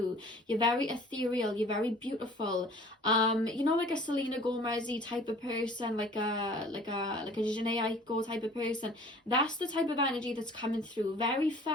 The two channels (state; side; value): normal; both; correlation 0.49